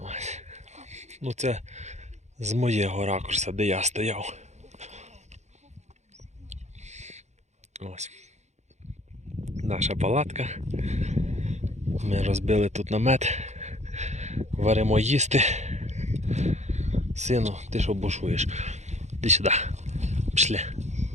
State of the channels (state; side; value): late; left; 0.33 ms